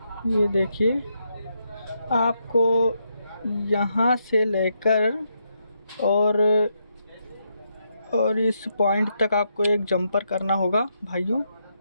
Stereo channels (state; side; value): inverted; both; correlation -0.80